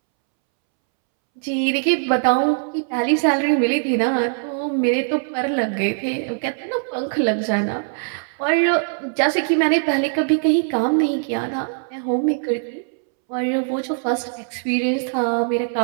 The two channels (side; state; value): left; silent; 65 dB below the other